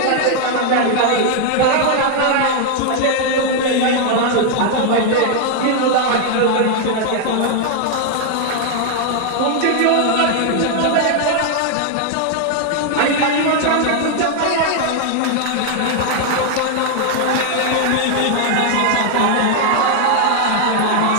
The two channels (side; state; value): both; different; correlation 0.00